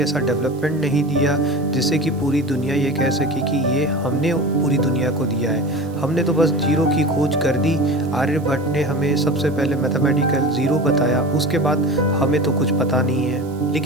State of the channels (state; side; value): noise; right; hiss, 26 dB below the sound